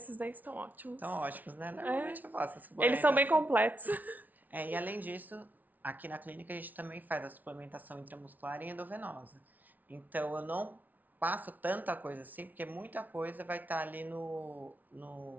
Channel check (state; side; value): late; left; 0.078 ms